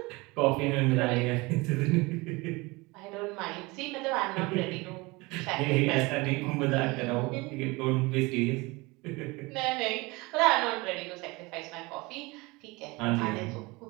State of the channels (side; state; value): left; quieter; 24.2 dB